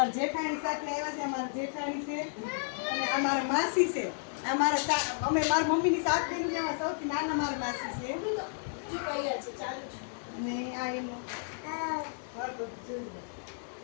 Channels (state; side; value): silent; right; digital silence